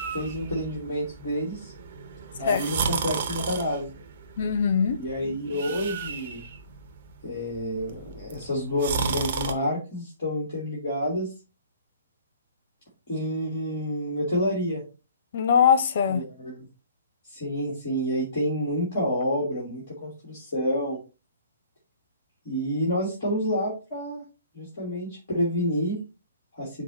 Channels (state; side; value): inverted; both; correlation -0.53